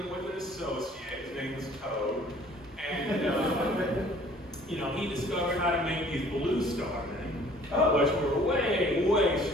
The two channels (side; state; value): both; normal; correlation 0.54